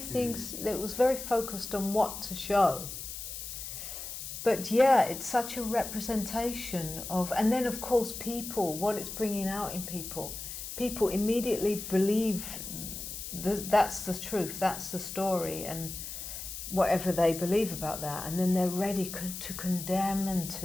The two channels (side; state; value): left; noise; hiss, 8 dB below the sound